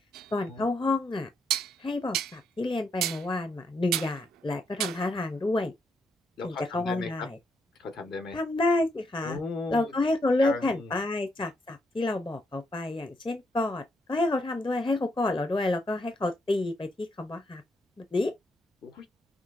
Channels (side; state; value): both; normal; correlation 0.77